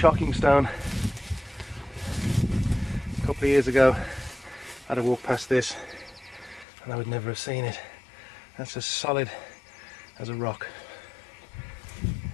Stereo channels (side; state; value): right; drops out; at 6.7 s